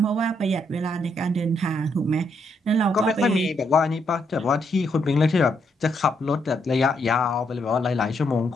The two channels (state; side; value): normal; both; correlation 0.76